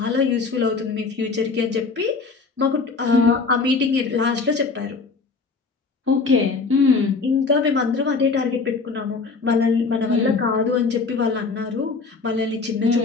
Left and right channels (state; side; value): quieter; right; 4.4 dB